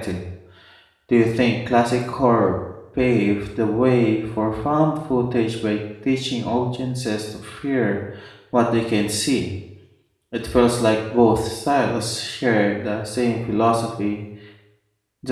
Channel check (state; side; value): identical; both; correlation 1.00